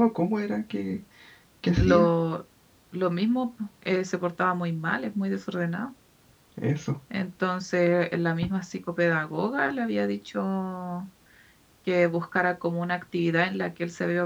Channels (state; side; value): identical; both; correlation 1.00